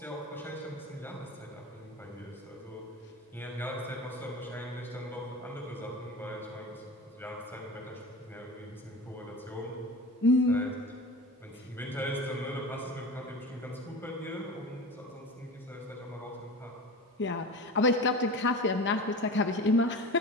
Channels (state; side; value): normal; both; correlation 0.32